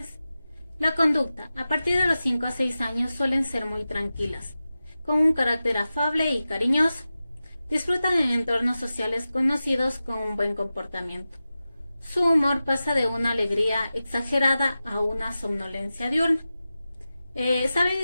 La conducta, a partir de los 5 a 6 años suelen ser muy tranquilas, con un carácter afable y cariñoso. Disfrutan en entornos sociales conocidos con un buen comportamiento. Su humor pasa de una alegría exagerada a una somnolencia diurna. Saben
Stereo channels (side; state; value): both; inverted; correlation -0.94